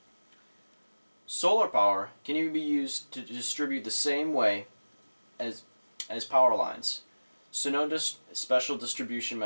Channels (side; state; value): both; inverted; correlation -1.00